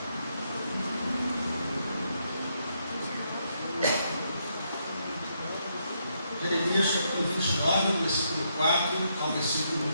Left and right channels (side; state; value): both; inverted; correlation -0.77